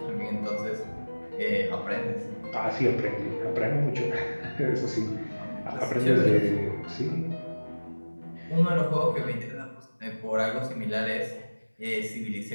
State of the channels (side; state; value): both; inverted; correlation -1.00